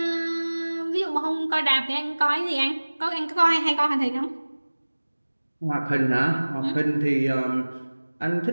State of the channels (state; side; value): inverted; both; correlation -1.00